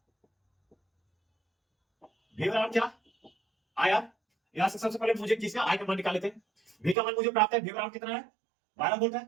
V बराबर क्या आर, यहां से सबसे पहले मुझे किसका आई का मान निकाल लेते हैं। V का मान मुझे प्राप्त है, V बराबर कितना है 12 वोल्ट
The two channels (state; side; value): drops out; left; at 7.0 s